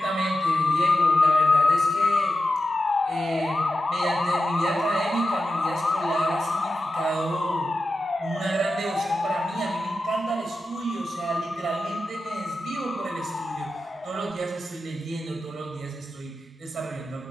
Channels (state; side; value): normal; both; correlation 0.90